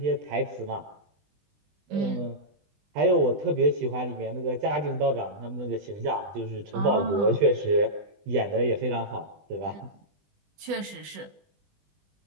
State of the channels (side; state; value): left; late; 20 ms